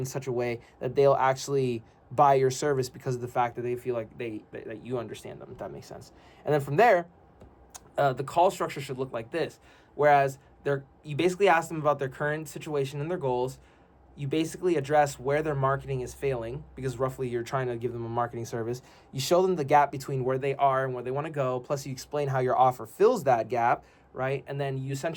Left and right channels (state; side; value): identical; both; correlation 1.00